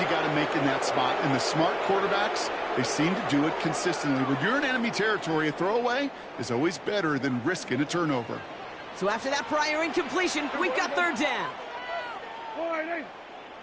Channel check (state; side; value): identical; both; correlation 1.00